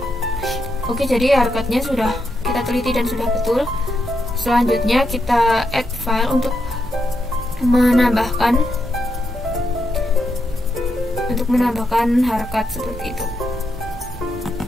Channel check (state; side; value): normal; both; correlation 0.82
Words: Oke, jadi harkatnya sudah kita teliti dan sudah betul. Selanjutnya kita add file untuk menambahkan harkat seperti itu.